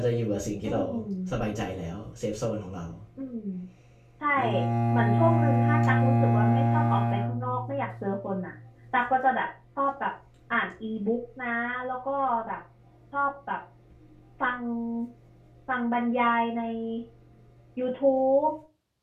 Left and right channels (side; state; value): both; identical; correlation 1.00